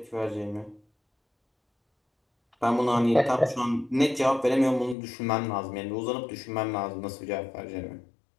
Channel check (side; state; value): right; drops out; at 5.0 s